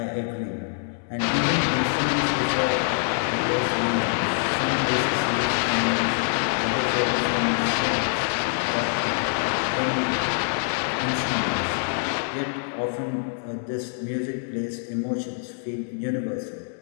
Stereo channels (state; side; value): silent; right; digital silence